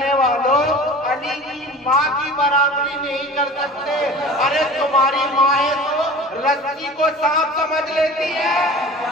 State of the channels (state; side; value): normal; both; correlation 0.39